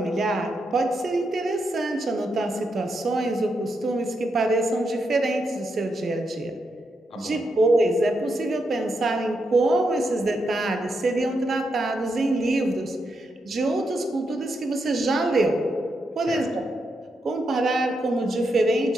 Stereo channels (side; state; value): both; normal; correlation 0.83